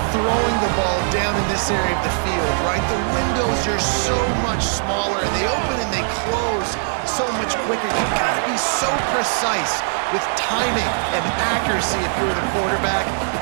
throwing the ball down in this area of the field, right? The windows are so much smaller, and they open and they close so much quicker. You've got to be so precise with timing and accuracy if you're the quarterback.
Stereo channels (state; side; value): silent; left; digital silence